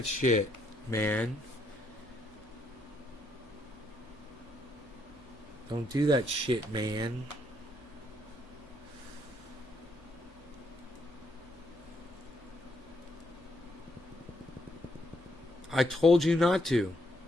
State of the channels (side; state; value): right; noise; hum, 29 dB below the sound